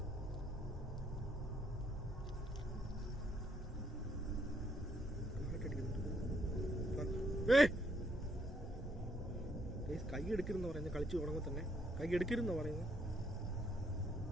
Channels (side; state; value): both; normal; correlation 0.71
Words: കൈ എടുക്കരുതെന്ന് പറയുന്നത് കളിച്ച് തുടങ്ങുമ്പോൾ തന്നെ കൈ എടുക്കരുതെന്ന് പറയുന്നത്.